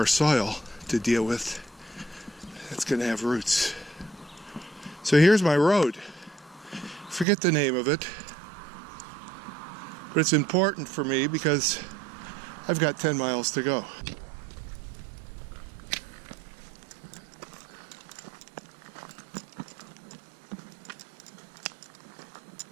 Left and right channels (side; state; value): left; drops out; at 7.2 s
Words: soil to deal with. It's going to have roots. So here's my road. Forget the name of it. But it's important for me because I've got 10 miles to go.